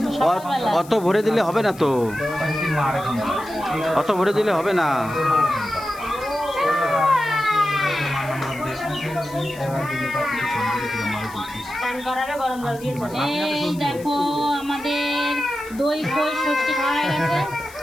অত ভরে দিলে হবে না তো, অত ভরে দিলে হবে না। এই দেখো আমাদের দই খই ষষ্ঠী খাওয়া হয়ে গেছে,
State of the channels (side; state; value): left; noise; hiss, 20 dB below the sound